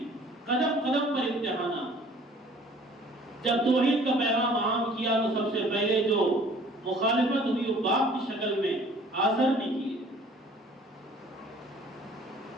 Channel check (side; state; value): both; normal; correlation 0.52